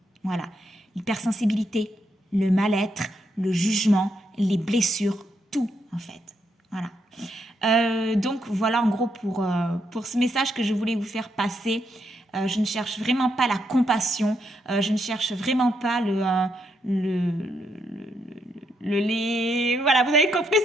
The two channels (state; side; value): normal; both; correlation 0.78